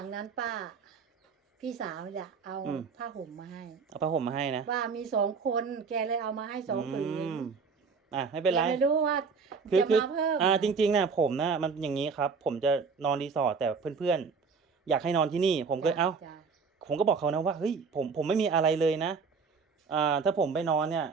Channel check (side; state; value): left; quieter; 5.3 dB